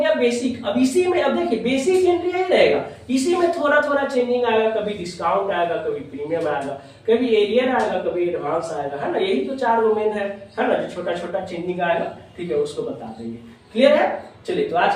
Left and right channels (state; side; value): identical; both; correlation 1.00